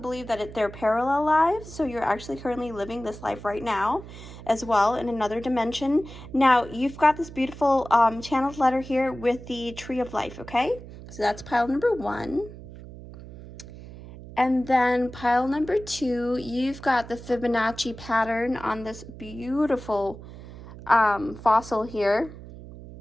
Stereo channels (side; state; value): right; noise; hum, 15 dB below the sound